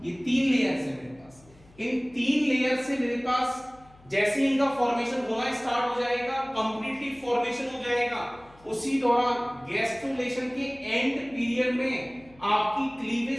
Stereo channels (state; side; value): noise; left; hum, 26 dB below the sound